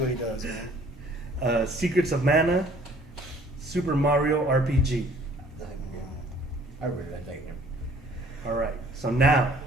he does, man. Secrets of Mana, Super Mario RPG. I really like that game. All right, so now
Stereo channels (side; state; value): both; normal; correlation 0.55